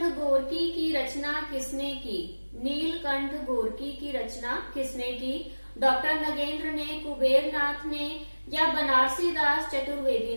गोर्की की रचना किसने की? नीलकंठ गोर्की की रचना किसने की? डॉक्टर नगेंद्र ने, कुबेरनाथ ने, या बनारसी दास चतुर्वेदी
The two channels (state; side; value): inverted; both; correlation -1.00